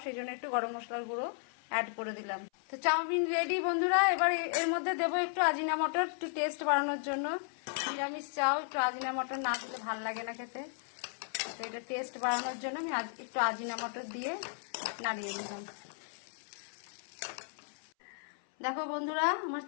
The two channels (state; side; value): silent; right; 55 dB below the other